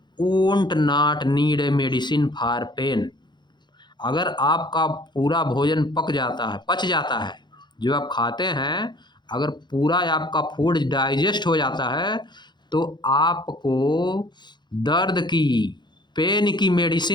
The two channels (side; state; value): right; late; 0.21 ms